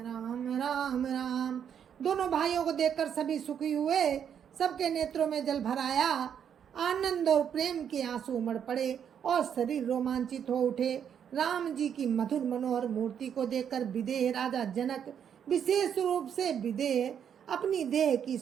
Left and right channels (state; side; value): quieter; left; 8.4 dB